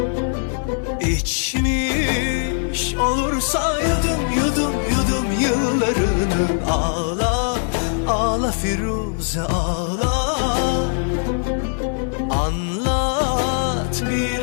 İçmiş olursa yudum yudum yudum yıllarını. Ağla ağla Firuze ağla, anlat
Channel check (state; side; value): silent; right; 64 dB below the other